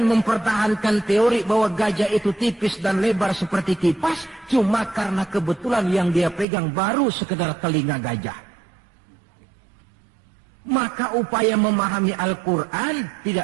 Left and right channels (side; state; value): left; drops out; at 6.5 s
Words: mempertahankan teori bahwa gajah itu tipis dan lebar seperti kipas, cuma karena kebetulan yang dia pegang baru sekedar telinga gajah. Maka upaya memahami Al-Quran